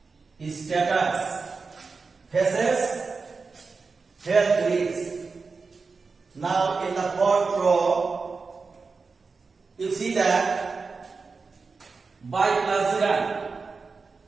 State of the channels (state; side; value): quieter; left; 4.5 dB